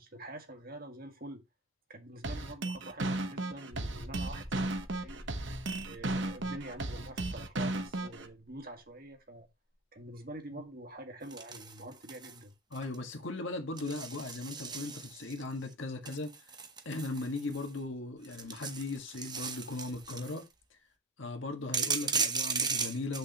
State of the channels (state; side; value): normal; both; correlation 0.31